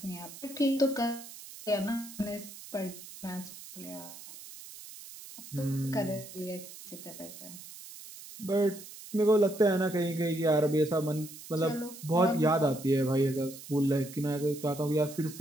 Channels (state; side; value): noise; right; hiss, 15 dB below the sound